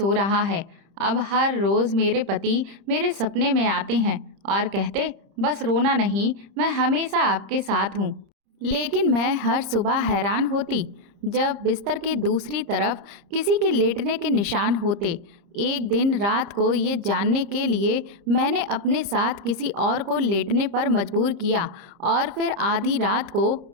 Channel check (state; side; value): late; left; 30 ms